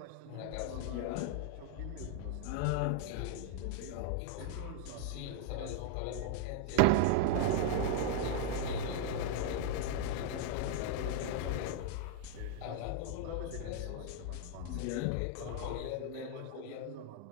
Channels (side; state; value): both; different; correlation 0.00